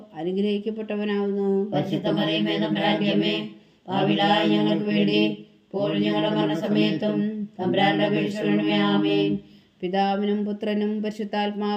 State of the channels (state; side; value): identical; both; correlation 1.00